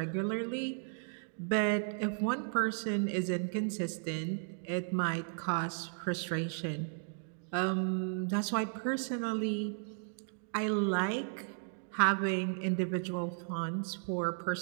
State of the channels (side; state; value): left; silent; digital silence